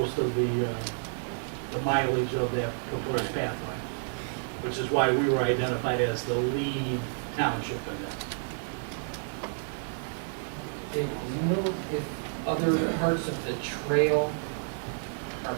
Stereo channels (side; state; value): left; silent; digital silence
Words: of the mileage of that proposed pathway, which is why we were identified as the lead township in this. Dave, do you know if other parts of the trail are